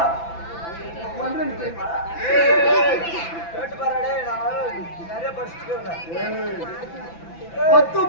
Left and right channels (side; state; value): right; late; 5.9 ms